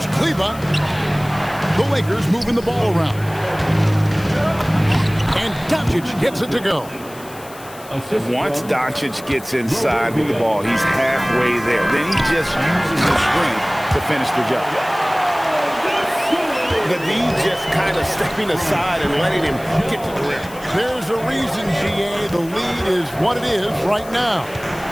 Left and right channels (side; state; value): left; noise; hiss, 19 dB below the sound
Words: Kleba. The Lakers moving the ball around. And Doncic gets it to go. Once Doncic gets inside with the ball, he's halfway there. Then he just uses his strength to finish the job. The D just kind of stepping aside and letting him get to the rim. There's a reason, GA, the lead is what it is right now.